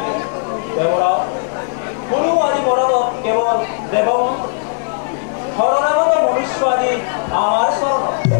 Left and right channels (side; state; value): right; silent; 68 dB below the other